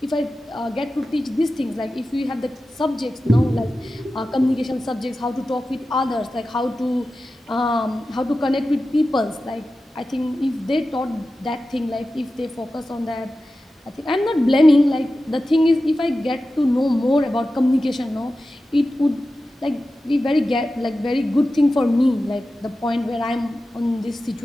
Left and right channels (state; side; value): normal; both; correlation 0.94